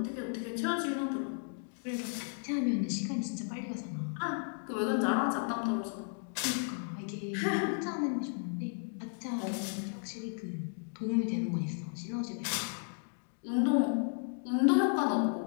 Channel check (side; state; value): right; silent; 55 dB below the other